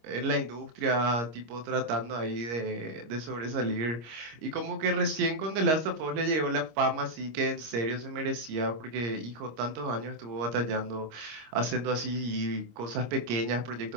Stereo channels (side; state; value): left; late; 26 ms